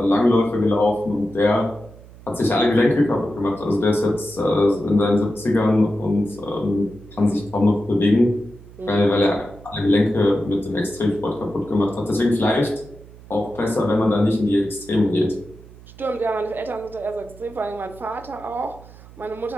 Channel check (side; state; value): right; noise; hum, 20 dB below the sound